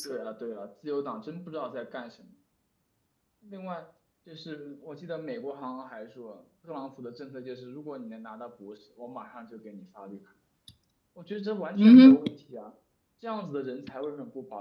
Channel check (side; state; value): both; identical; correlation 1.00